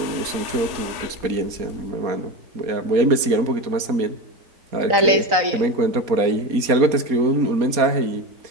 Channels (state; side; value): late; left; 4.2 ms